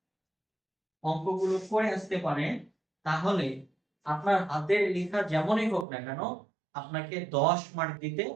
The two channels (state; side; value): drops out; left; at 5.9 s